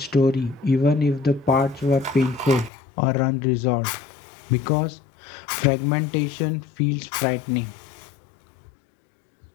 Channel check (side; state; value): right; drops out; at 2.7 s